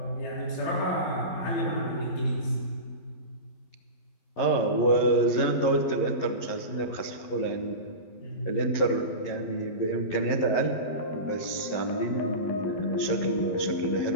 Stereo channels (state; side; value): late; right; 12 ms